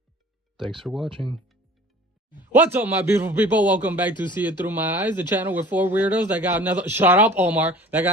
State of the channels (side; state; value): both; normal; correlation 0.45